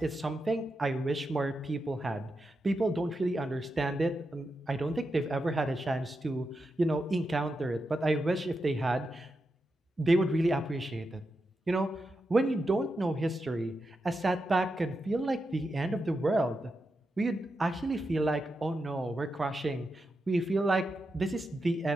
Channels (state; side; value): normal; both; correlation 0.87